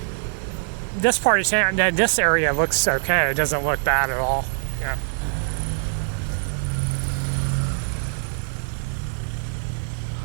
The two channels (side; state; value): left; silent; 62 dB below the other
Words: This part of town, this area looks okay. It doesn't look bad at all. Yeah.